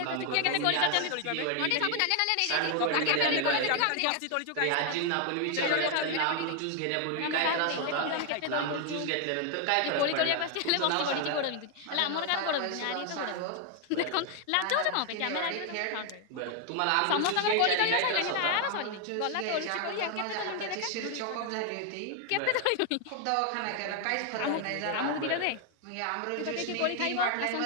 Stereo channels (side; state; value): both; different; correlation 0.00